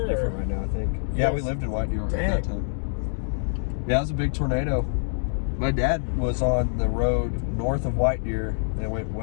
Deer, different or? right now, I think. You Yeah, guys- we lived in White Deer at Dang. that time. Yeah, it was a big tornado. My dad was on the road north of White Deer and it went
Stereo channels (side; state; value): right; silent; digital silence